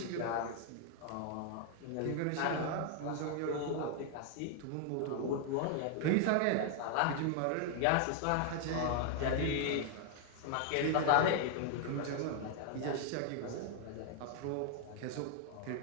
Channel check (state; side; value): different; both; correlation 0.00